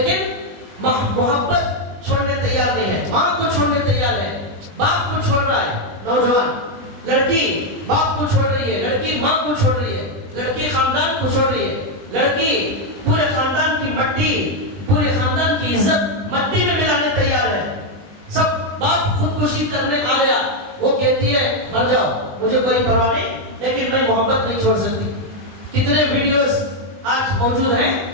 محبت چھوڑنے تیار نہیں ہے، ماں کو چھوڑنے تیار ہے، باپ کو چھوڑ رہا ہے، نوجوان لڑکی باپ کو چھوڑ رہی ہے، لڑکی ماں کو چھوڑ رہی ہے، لڑکی خاندان کو چھوڑ رہی ہے، لڑکی پورے خاندان کی مٹی، پورے خاندان کی عزت مٹی میں ملانے تیار ہے۔ سب باپ خودکشی کرنے آ گیا، وہ کہتی ہے مر جاؤ مجھے کوئی پرواہ نہیں، لیکن میں محبت نہیں چھوڑ سکتی۔ کتنے ویڈیوز آج موجود ہیں،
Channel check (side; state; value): left; late; 20 ms